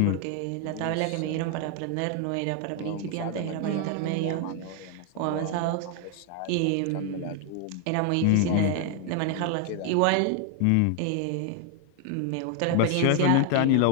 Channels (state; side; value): different; both; correlation 0.00